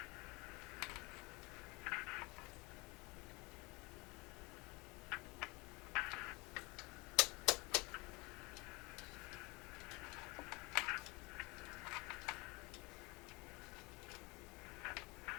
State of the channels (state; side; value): quieter; right; 26.2 dB